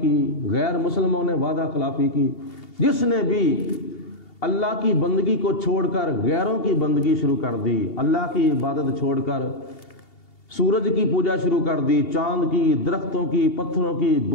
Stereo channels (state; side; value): late; right; 2.8 ms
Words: کی، غیر مسلموں نے وعدہ خلافی کی۔ جس نے بھی اللہ کی بندگی کو چھوڑ کر غیروں کی بندگی شروع کر دی، اللہ کی عبادت چھوڑ کر سورج کی پوجا شروع کر دی، چاند کی، درختوں کی، پتھروں کی،